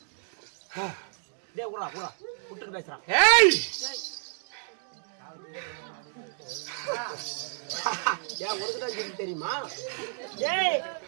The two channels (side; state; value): left; silent; digital silence